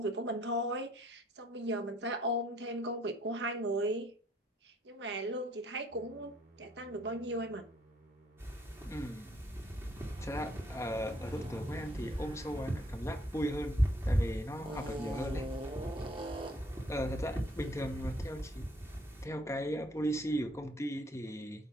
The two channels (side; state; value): both; normal; correlation 0.64